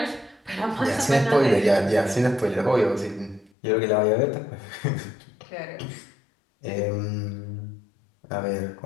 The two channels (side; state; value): right; drops out; at 3.5 s